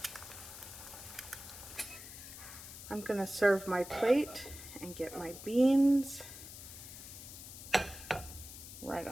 I'm gonna serve my plate and get my beans right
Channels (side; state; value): left; noise; hiss, 13 dB below the sound